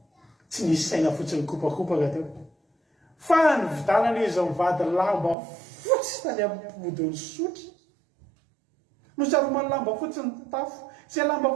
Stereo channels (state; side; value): drops out; left; at 5.4 s